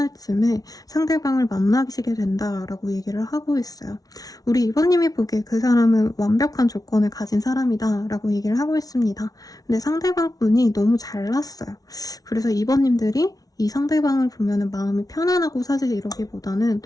쯤에 상대방을 만나시게 된다라고 얘기를 하고 있어요. 우리 이번님이 보기에 그 사람은 완벽한 조건을 가진 사람이다 라고 얘기를 하고 있습니다. 근데 상대방 분이 너무 잘났어요. 그래서 이번님들이 이 상대방을 보면은 마음이 편안하고 사실 이러기보다는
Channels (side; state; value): right; late; 0.18 ms